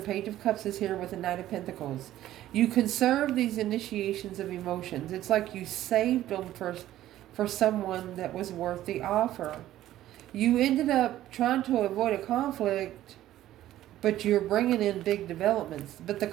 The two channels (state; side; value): quieter; left; 13.6 dB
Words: Page of Cups is here with the Knight of Pentacles. You conserve these initiations of emotions. It's like you saved them for someone that was worth the offer. You ended up trying to avoid a conflict, but you're bringing in big developments. But the